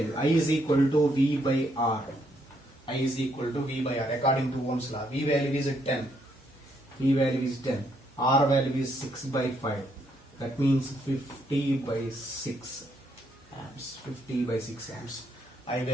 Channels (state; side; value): normal; both; correlation 0.73